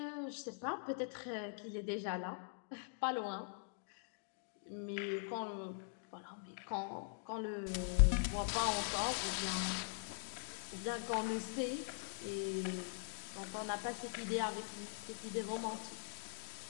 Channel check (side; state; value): right; silent; digital silence